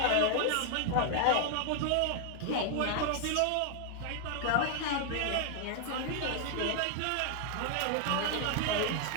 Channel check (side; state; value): both; different; correlation 0.00